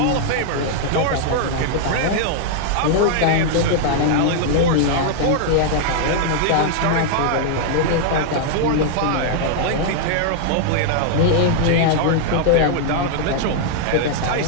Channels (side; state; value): both; different; correlation -0.01